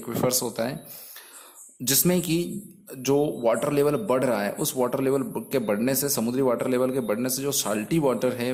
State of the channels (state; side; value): identical; both; correlation 1.00